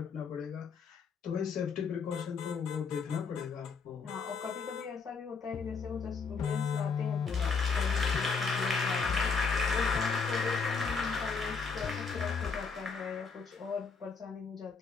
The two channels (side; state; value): right; quieter; 5.1 dB